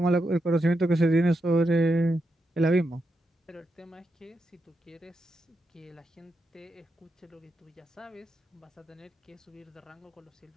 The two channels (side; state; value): both; normal; correlation 0.84